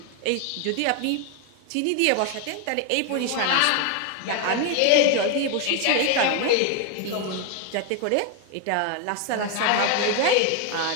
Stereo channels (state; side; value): different; both; correlation 0.01